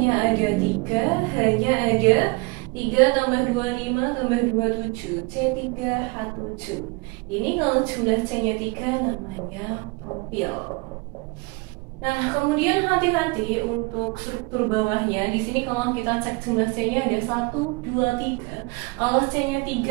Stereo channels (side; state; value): left; quieter; 27.2 dB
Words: ada 3, H-nya ada 3 tambah 25 tambah 27, C3H7. Ini kalau jumlah C-nya 3 namanya propil. Nah, kemudian hati-hati untuk struktur bawahnya. Di sini kalau kita cek jumlah C-nya ada 1, 2, 3. Kalau C-nya